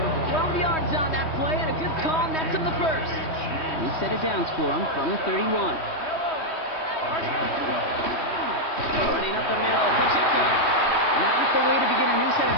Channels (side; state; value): right; late; 3.2 ms